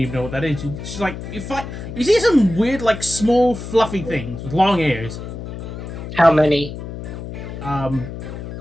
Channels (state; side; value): noise; left; hum, 9 dB below the sound